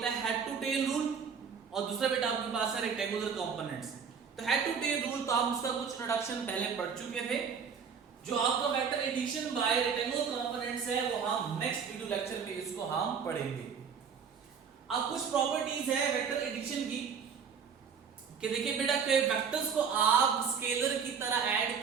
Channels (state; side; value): quieter; left; 6.4 dB